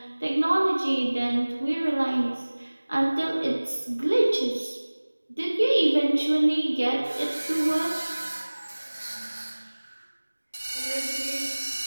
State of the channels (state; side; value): inverted; both; correlation -1.00